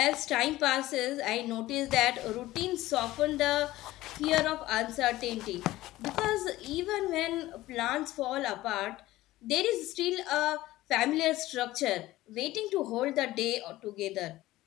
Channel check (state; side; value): quieter; right; 16.8 dB